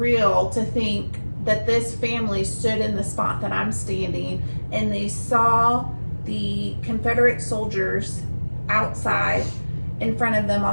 to think that this family stood in the spot that I'm standing and they saw the Confederate soldiers outside in front of them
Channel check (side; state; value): both; inverted; correlation -1.00